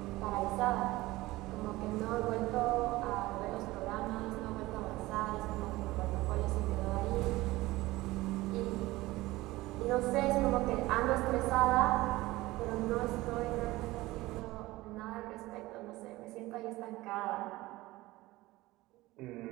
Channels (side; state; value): left; quieter; 18.9 dB